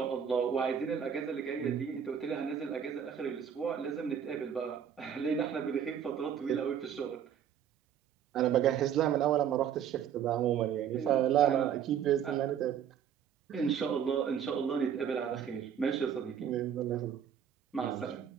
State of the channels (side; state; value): left; quieter; 8.6 dB